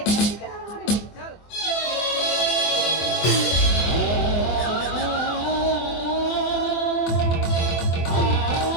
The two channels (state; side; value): late; right; 24 ms